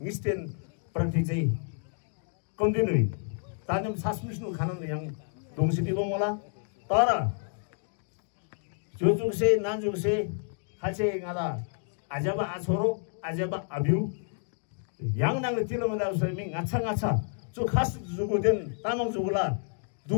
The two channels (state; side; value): silent; right; 58 dB below the other